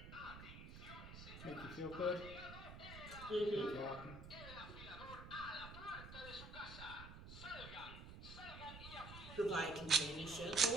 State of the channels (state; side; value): noise; right; rumble, 12 dB below the sound